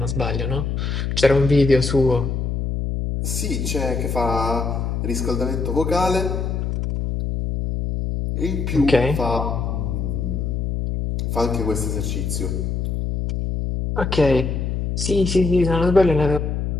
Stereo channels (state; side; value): noise; left; hum, 1 dB below the sound